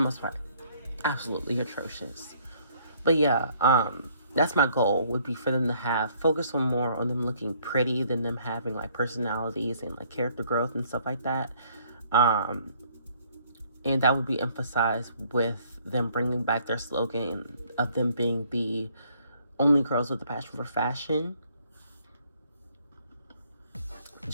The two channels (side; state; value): both; inverted; correlation -0.63